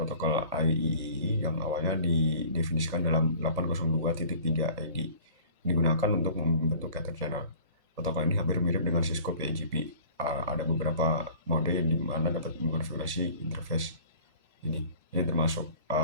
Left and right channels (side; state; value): both; inverted; correlation -0.47